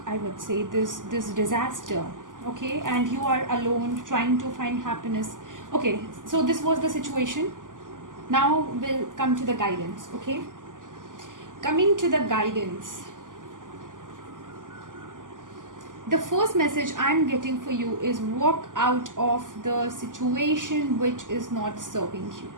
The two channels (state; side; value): late; left; 0.88 ms